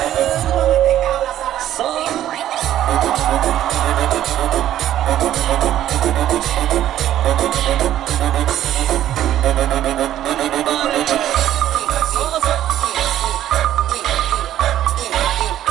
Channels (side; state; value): left; quieter; 12.2 dB